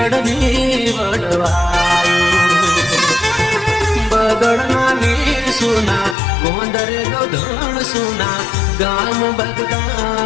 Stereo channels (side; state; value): right; drops out; at 6.2 s